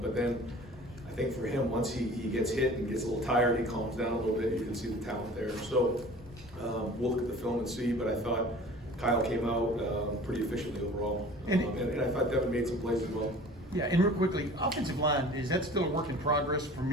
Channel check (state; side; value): normal; both; correlation 0.44